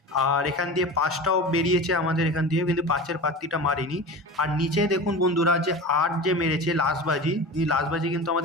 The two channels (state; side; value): normal; both; correlation 0.31